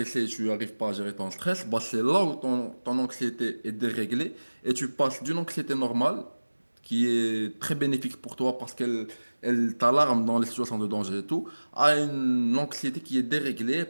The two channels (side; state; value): both; inverted; correlation -1.00